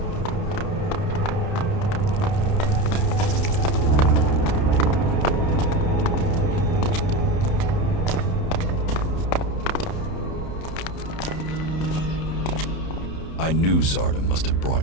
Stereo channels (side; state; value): right; late; 31 ms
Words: I knew Zardom must have